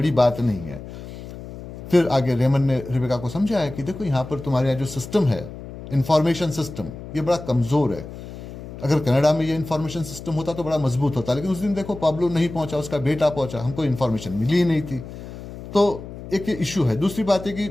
बात नहीं है। फिर आगे रेमन ने रेबेका को समझाया कि देखो, यहाँ पर तुम्हारे यहाँ जो सिस्टम है, इंफॉर्मेशन सिस्टम, ये बड़ा कमज़ोर है। अगर कनाडा में ये इंफॉर्मेशन सिस्टम होता तो बड़ा मजबूत होता, लेकिन उस दिन देखो पाब्लो नहीं पहुंचा, उसका बेटा पहुंचा, हमको इंफॉर्मेशन मिली ही नहीं थी। तो एक ये इशू है। दूसरी बात है कि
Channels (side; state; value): left; noise; hum, 12 dB below the sound